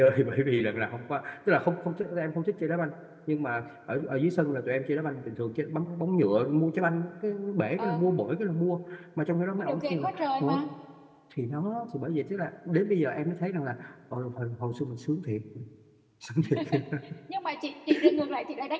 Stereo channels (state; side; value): identical; both; correlation 1.00